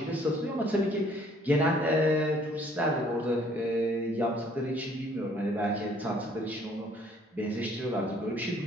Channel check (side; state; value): both; normal; correlation 0.60